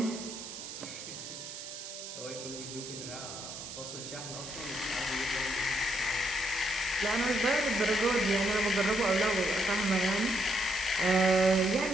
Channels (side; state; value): right; noise; hiss, 10 dB below the sound